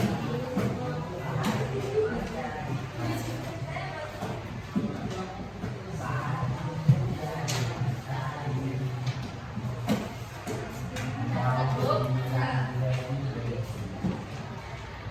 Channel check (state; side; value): identical; both; correlation 1.00